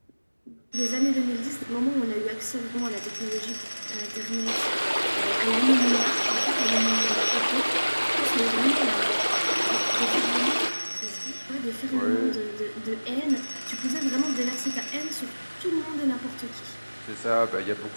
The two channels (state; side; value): inverted; both; correlation -1.00